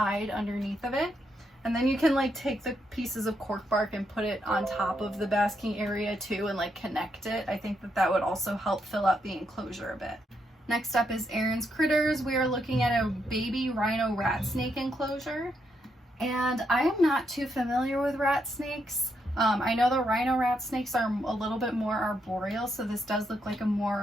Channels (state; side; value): normal; both; correlation 0.79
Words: underneath of it. And then you can take the pieces of cork bark and put it on top of the basking area too and connect it. I think that would also help fill out the enclosure a bit. Next up is Aaron's Critters. We are looking at a baby rhino rat snake enclosure. And I am not too familiar with rat snakes. I know the rhino rat snakes are a little bit more arboreal, so this does look like